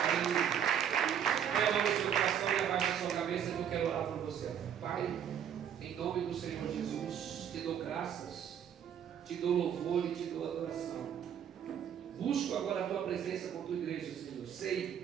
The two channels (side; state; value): left; quieter; 8.9 dB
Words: Põe a mão no seu coração e abaixa a sua cabeça que eu quero orar por você. Pai, em nome do Senhor Jesus, te dou graças, te dou louvor e te dou adoração. Busco agora a tua presença com a tua igreja, Senhor.